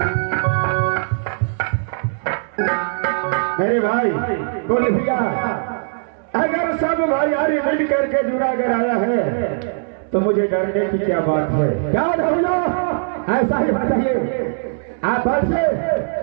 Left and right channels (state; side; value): silent; left; 66 dB below the other